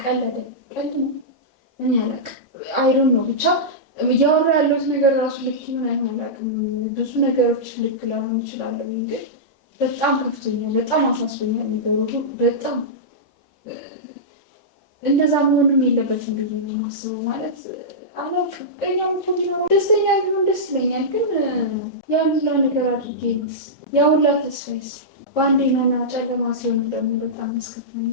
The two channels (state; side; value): normal; both; correlation -0.13